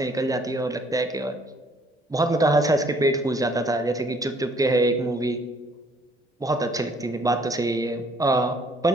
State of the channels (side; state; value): both; normal; correlation 0.61